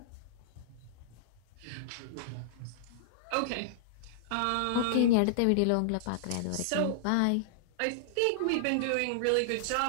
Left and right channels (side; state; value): both; different; correlation -0.01